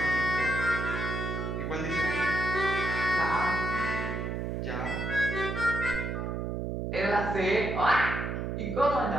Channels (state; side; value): noise; right; hum, 3 dB below the sound